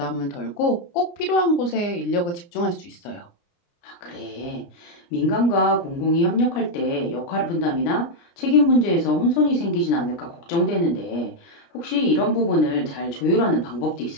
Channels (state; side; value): late; right; 29 ms